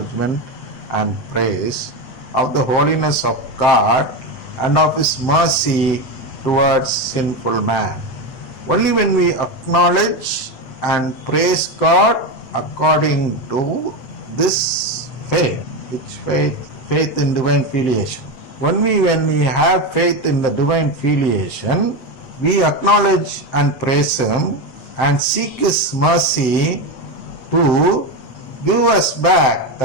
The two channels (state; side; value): late; right; 7.6 ms